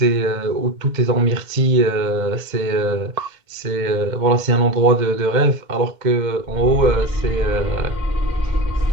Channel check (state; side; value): late; left; 2.1 ms